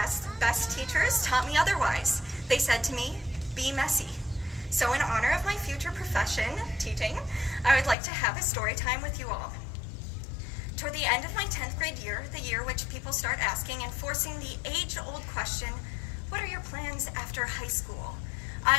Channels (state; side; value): drops out; right; at 8.0 s